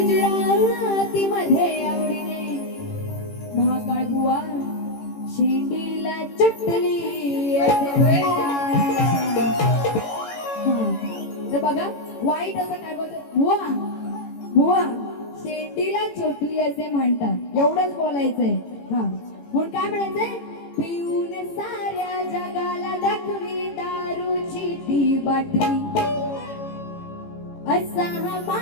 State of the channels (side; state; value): right; late; 18 ms